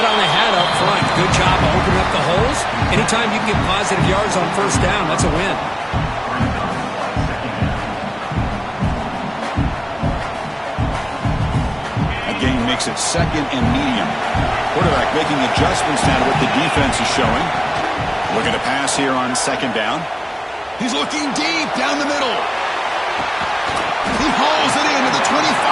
on the hat up front. Good job of opening up the holes. Anytime you can get positive yards on 1st down, that's a win. That game makes it 2nd and medium. Quarterback making adjustments now to what the defense is showing. Looking to pass here on 2nd down. He's looking deep down the middle. He hauls it into the 25,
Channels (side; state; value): both; identical; correlation 1.00